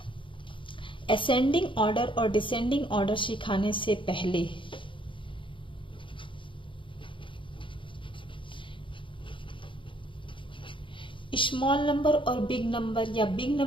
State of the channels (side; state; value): right; late; 0.24 ms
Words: ascending order और डिसेंडिंग ऑर्डर सिखाने से पहले स्मॉल नंबर और बिग नंबर या बिग